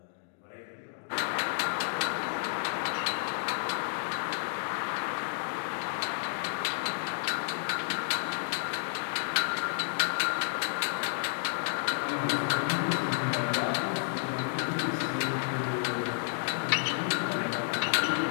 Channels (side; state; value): right; silent; digital silence